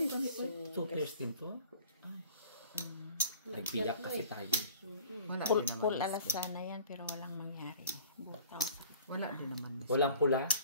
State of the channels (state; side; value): inverted; both; correlation -0.48